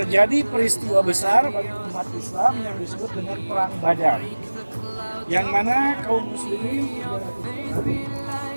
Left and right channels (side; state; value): both; inverted; correlation -1.00